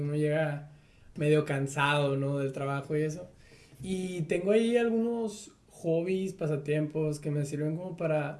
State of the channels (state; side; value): identical; both; correlation 1.00